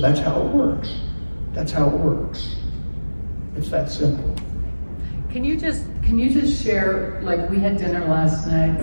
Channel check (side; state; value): both; inverted; correlation -1.00